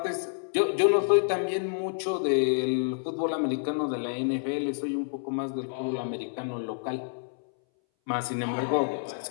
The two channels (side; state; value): right; silent; 59 dB below the other